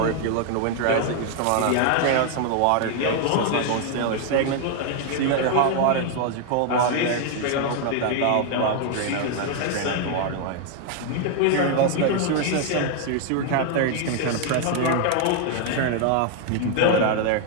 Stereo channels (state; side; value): different; both; correlation 0.00